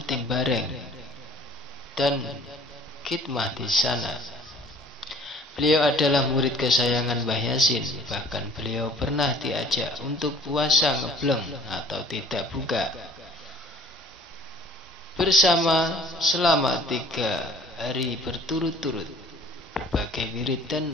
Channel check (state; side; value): normal; both; correlation 0.52